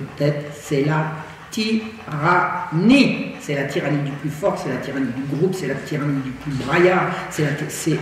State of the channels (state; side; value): identical; both; correlation 1.00